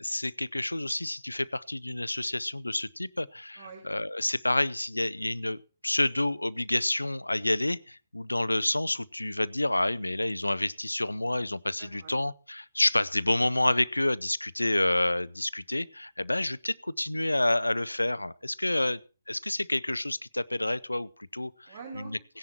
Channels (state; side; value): inverted; both; correlation -1.00